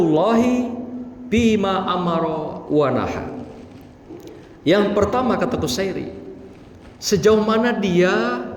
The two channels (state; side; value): identical; both; correlation 1.00